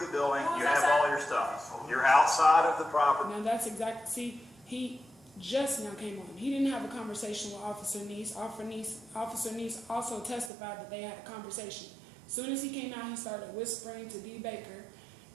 building, you have all your stuff. You're outside of the property. Now that's exactly, see, he just now came on. He didn't have a conversation with Officer Neese. Officer Neese also testified that they had a conversation. As soon as he came out, he started whispering to D. Baker,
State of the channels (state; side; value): drops out; left; at 10.5 s